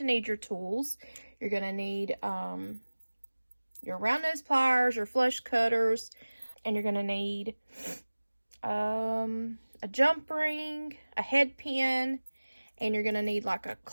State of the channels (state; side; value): inverted; both; correlation -1.00